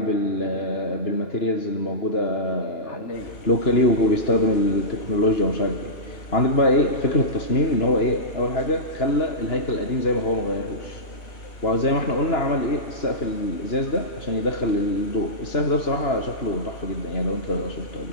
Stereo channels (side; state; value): right; late; 2.9 ms